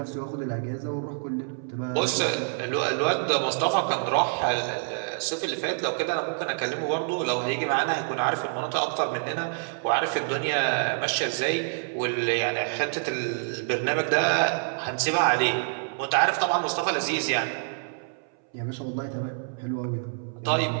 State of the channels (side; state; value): left; silent; 60 dB below the other